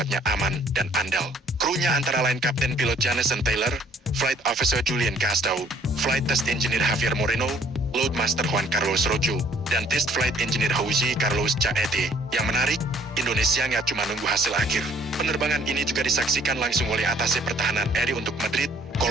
aman dan andal. Krunya antara lain Kapten Pilot Jameson Taylor, Flight Officer Julian Castro, Flight Test Engineer Javier Moreno, Loadmaster Juan Carlos Rojo, dan Test Flight Engineer Jose Carlos Chaete. Yang menarik, Indonesia nggak cuma nunggu hasil akhir. Penerbangan ini juga disaksikan langsung oleh Atase Pertahanan RI untuk Madrid,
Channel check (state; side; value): normal; both; correlation 0.60